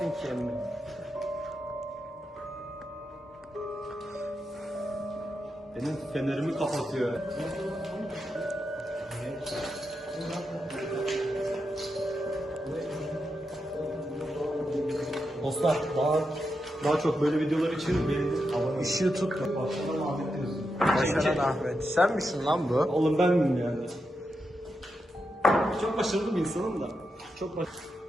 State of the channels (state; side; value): normal; both; correlation 0.86